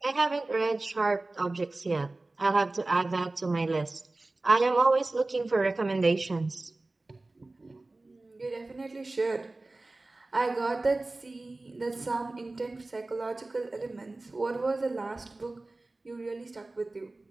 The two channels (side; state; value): left; quieter; 3.0 dB